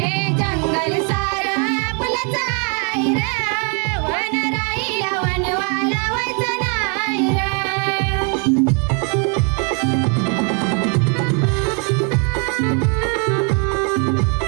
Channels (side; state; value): left; quieter; 37.0 dB